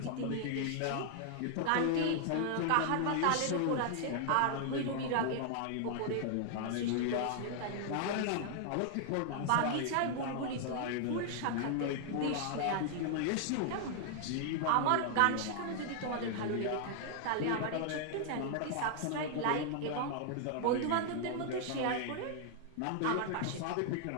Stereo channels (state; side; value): different; both; correlation 0.00